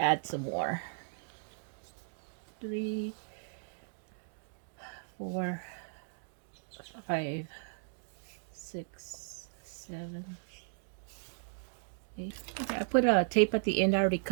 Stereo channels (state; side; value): silent; left; digital silence